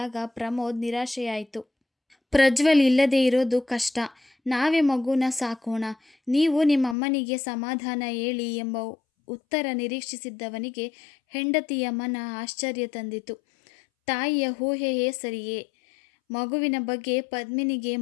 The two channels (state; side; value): drops out; right; at 7.0 s